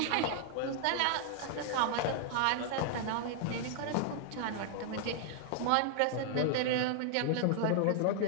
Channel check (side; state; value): both; different; correlation -0.01